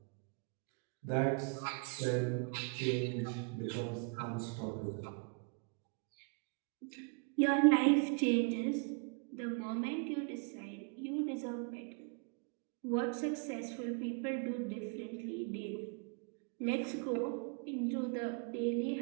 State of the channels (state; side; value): quieter; left; 34.9 dB